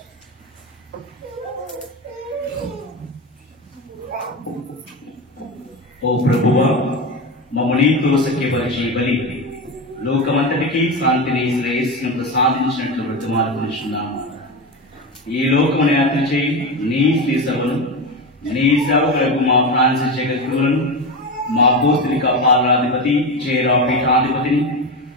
ఓ ప్రభువా, మమ్ము నీతో సఖ్యపరిచి బలి లోకమంతటికి శాంతిని శ్రేయస్సును ప్రసాదించినట్లు బ్రతిమాలుకొనుచున్నాము. ఈ లోకమును యాత్ర చేయి నీ శ్రీ సభను, నీ సేవకులకు మా ఫ్రాన్సిస్ జగద్గురువులను, మా పోస్తులిక పాలనాధిపతి చేరా పీఠాధిపతిని,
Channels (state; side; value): normal; both; correlation 0.19